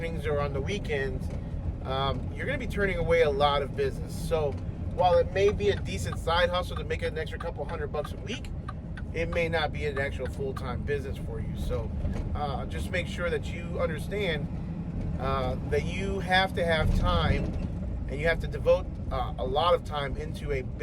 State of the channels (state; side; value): identical; both; correlation 1.00